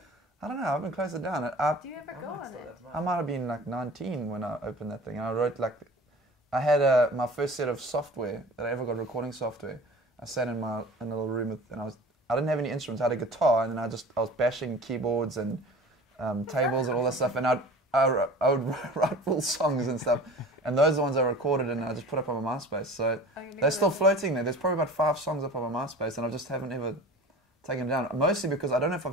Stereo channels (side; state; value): both; normal; correlation 0.40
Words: I don't know. I've been closed it down. Do you ever go on it? I might have been like 19 when I opened that thing. And I wrote like, I had my first set of software that I ever got, recording software. I sat in a little room with, and I didn't have any instruments. I had a guitar, and then I was bashing keyboards and tables and all that stuff. And I would write full songs and stuff. And those are the ones I recorded and I just put up on my MySpace. So they're still floating there. There's probably about 5 songs up on my MySpace, and I just haven't ever taken them down. Mostly because I don't know if